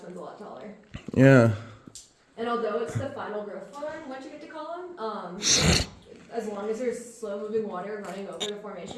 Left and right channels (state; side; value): identical; both; correlation 1.00